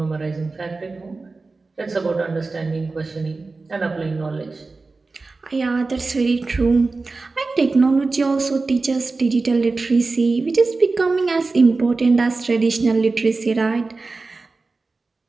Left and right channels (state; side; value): quieter; left; 3.8 dB